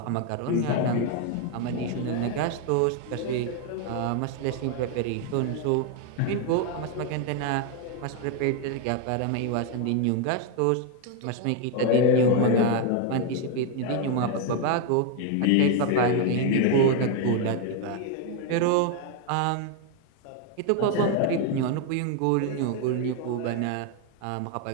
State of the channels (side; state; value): both; different; correlation 0.01